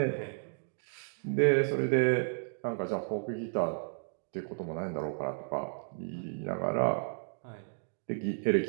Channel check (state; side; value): silent; left; digital silence